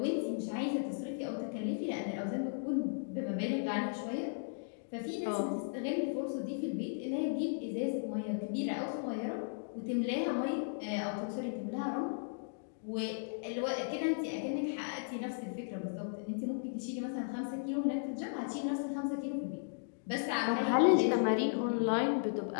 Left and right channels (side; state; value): right; silent; digital silence